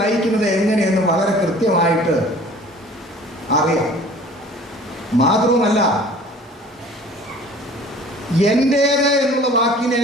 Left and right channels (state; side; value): normal; both; correlation 0.47